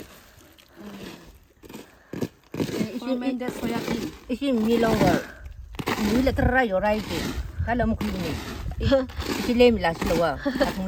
recommended soya bean. 이게 밀롱거 밀레 트라이 요라이지 달라 먹으니 이게 레밀라실와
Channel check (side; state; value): both; identical; correlation 1.00